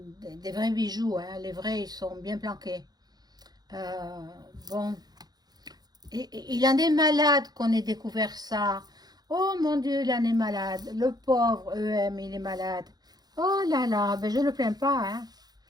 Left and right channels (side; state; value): left; late; 0.19 ms